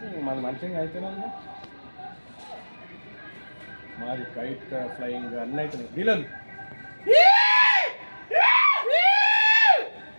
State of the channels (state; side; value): inverted; both; correlation -1.00